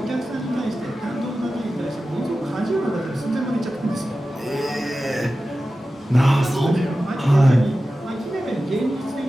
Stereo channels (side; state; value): both; normal; correlation 0.94